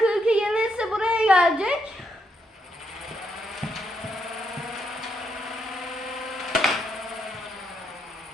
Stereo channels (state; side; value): normal; both; correlation 0.78